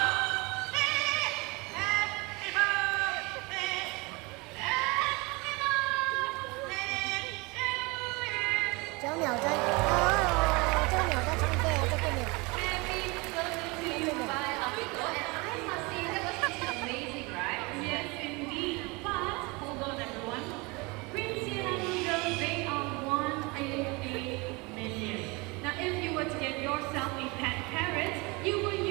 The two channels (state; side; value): quieter; left; 26.5 dB